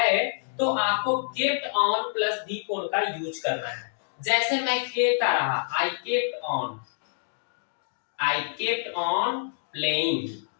तो आपको kept on plus V four का यूज करना है। जैसे मैं खेलता रहा, I kept on playing.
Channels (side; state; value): right; silent; digital silence